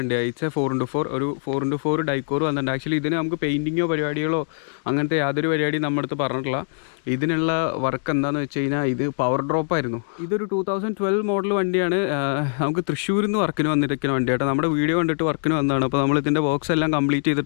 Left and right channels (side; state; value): right; silent; digital silence